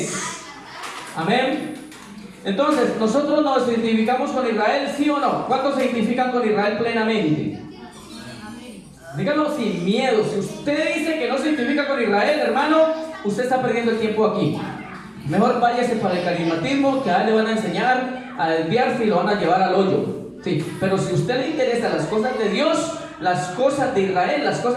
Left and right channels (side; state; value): both; identical; correlation 1.00